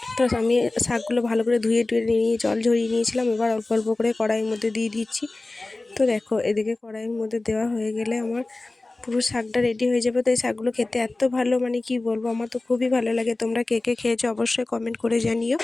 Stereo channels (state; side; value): quieter; right; 3.1 dB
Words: তো আমি শাকগুলো ভালো করে ধুয়ে নিয়ে জল ঝরিয়ে নিয়েছিলাম। এবার অল্প অল্প করে কড়াইয়ের মধ্যে দিয়ে দিচ্ছি। তো দেখো এদিকে কড়াইয়ের মধ্যে দেওয়া হয়ে গেলে আমার পুরো শাকটা রেডি হয়ে যাবে। তো এই শাকগুলো খেতে এত ভালো, মানে কি বলবো, আমার তো খুবই ভালো লাগে। তোমরা কে কে খেয়েছো অবশ্যই কমেন্ট করে জানিও।